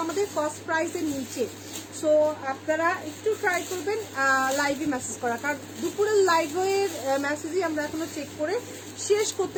আমাদের কস্ট প্রাইসের নিচে। সো আপনারা একটু ট্রাই করবেন লাইভে মেসেজ করা, কারণ দুপুরের লাইভের মেসেজই আমরা এখনো চেক করে শেষ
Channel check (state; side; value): identical; both; correlation 1.00